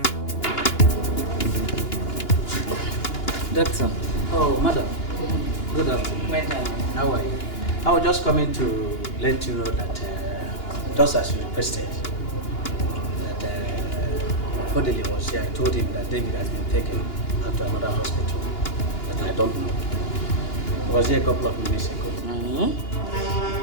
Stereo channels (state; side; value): late; right; 2.9 ms